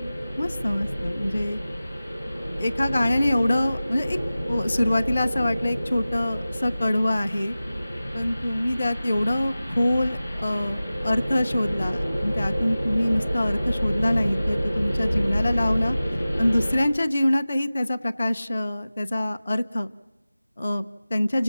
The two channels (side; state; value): both; inverted; correlation -0.96